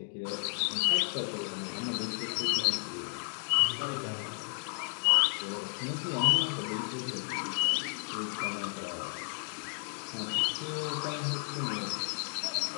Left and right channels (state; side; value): silent; right; 56 dB below the other